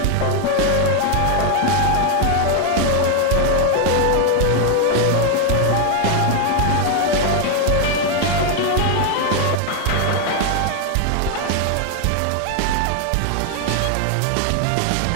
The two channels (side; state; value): both; different; correlation 0.01